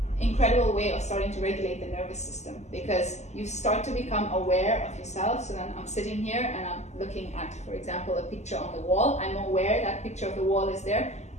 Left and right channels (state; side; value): late; right; 0.33 ms